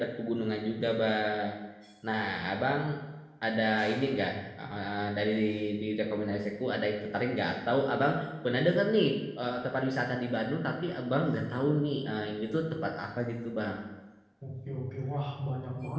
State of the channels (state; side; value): identical; both; correlation 1.00